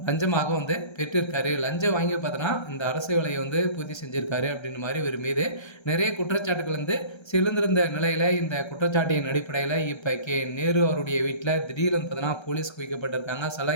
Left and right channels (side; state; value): right; late; 1.3 ms